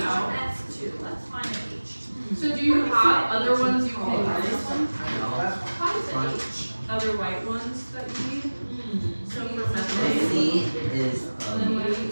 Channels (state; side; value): inverted; both; correlation -1.00